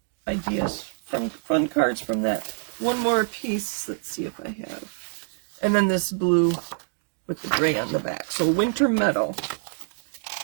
ideas, fun cards from that. One more piece. Let's see if I have. And then this blue with the gray on the back. So Winter Meadow.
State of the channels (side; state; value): left; silent; digital silence